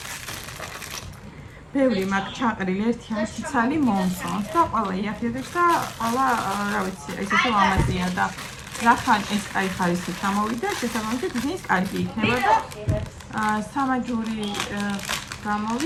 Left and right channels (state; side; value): identical; both; correlation 1.00